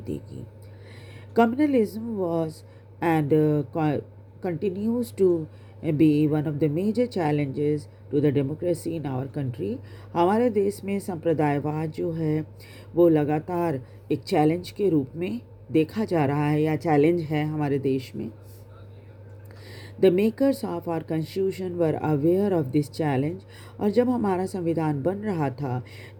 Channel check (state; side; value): identical; both; correlation 1.00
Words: देगी। Communalism was and continues to be one of the major challenges to the democracy in our country। हमारे देश में संप्रदायवाद जो है वो लगातार एक चैलेंज के रूप में देखा जा रहा है या चैलेंज है हमारे देश में। The makers of our constitution were aware of this challenge। और जब हमारा संविधान बन रहा था